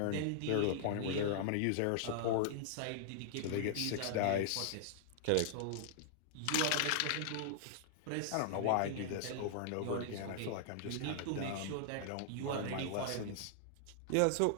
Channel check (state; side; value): different; both; correlation -0.01